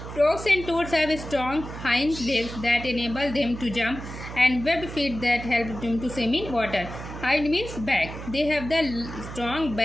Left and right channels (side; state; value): right; noise; hum, 10 dB below the sound